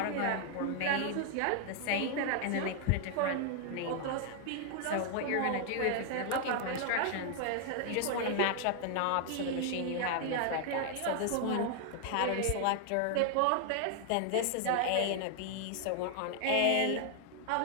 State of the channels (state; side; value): different; both; correlation 0.00